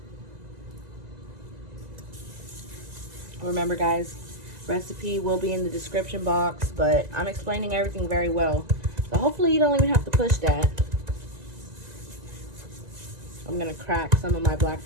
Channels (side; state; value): left; late; 1.9 ms